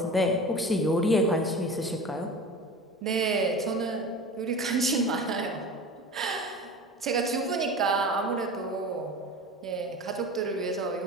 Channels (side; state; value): both; normal; correlation 0.34